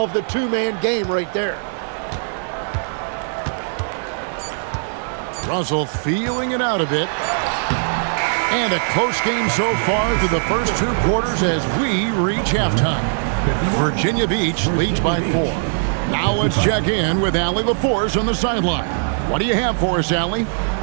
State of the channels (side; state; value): left; silent; digital silence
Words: the two-man game right there. Russell feeling it out a bit. And a close game so far through the first two quarters as we reach halftime. Virginia Beach leads by 4. Now let's check in with Allie LaForce on the sideline. What do you have for us, Allie?